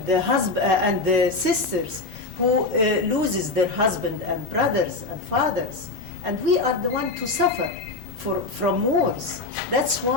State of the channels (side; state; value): right; quieter; 3.3 dB